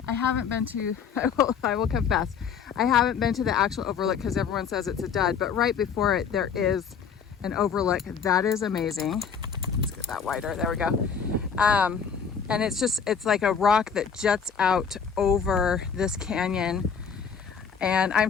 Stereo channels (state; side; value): quieter; right; 6.7 dB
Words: I haven't been to, I will confess, I haven't been to the actual overlook because everyone says it's a dud, but right before it, there is an overlook that is amazing. Let's get that wider, there we go. And it's like a rock that juts out over this canyon. And